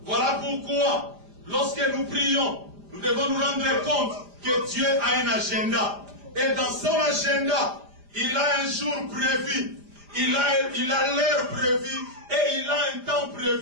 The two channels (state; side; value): late; left; 5.0 ms